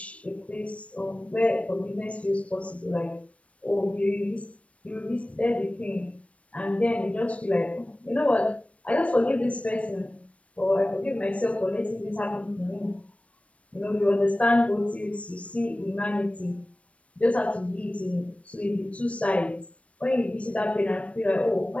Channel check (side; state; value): right; late; 0.063 ms